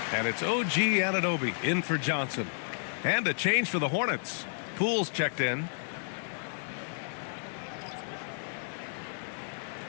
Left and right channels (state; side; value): silent; right; digital silence